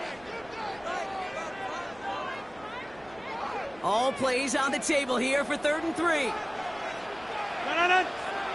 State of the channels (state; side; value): noise; right; hum, 24 dB below the sound